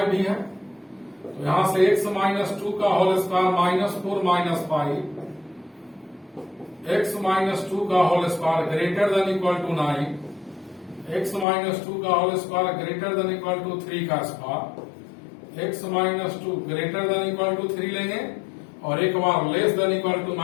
भी है तो यहां से x माइनस 2 का whole square minus 4 minus 5, x minus 2 का whole square greater than equal to 9, x minus 2 का whole square greater than equal to 3 का square, x minus 2 greater than equal to 3 लेंगे और एक बार less than equal to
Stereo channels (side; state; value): right; drops out; at 11.5 s